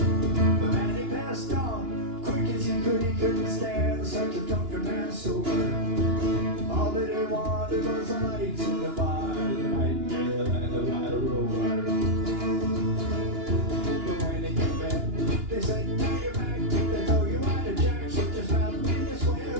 But Maddy passed on quick as he couldn't stand such a drunken man sober. All that he wanted was the lights in the bar, the nightingale and the white rover. But when he came back, they said, "Now you're back." They told you why the jack, so just about me to swear,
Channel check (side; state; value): left; late; 2.9 ms